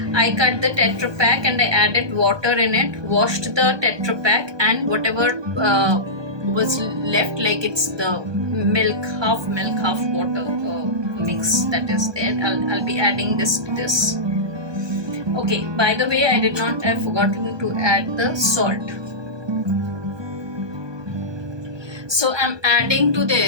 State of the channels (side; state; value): left; late; 1.2 ms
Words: I cut the Tetra Pak and I added water in it. Washed the Tetra Pak and whatever was left, like it's the milk, half water mix that is there. I'll be adding this to this. Okay. By the way, I've forgotten to add the salt. So I'm adding to